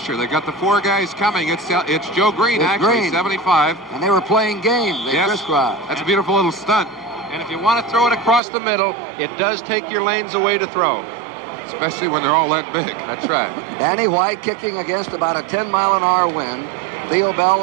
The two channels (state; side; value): drops out; left; at 8.4 s